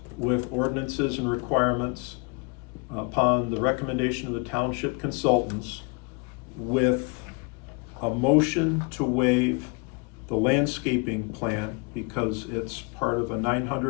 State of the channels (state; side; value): quieter; right; 31.3 dB